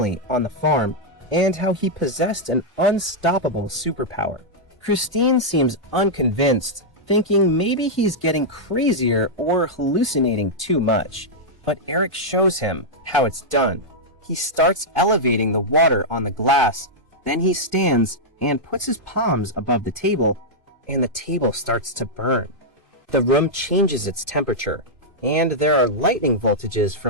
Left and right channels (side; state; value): both; normal; correlation -0.06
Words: on the farm and how he possessed an unstoppable superpower. Christine seems unconvinced, thinking maybe he's getting crazier or hallucinating too much. But Eric shows him how it's done. He starts elevating the water on the glass, then he stands and puts his palms above the table, and the table starts to burn. The room changes its temperature, and there are lightning voltages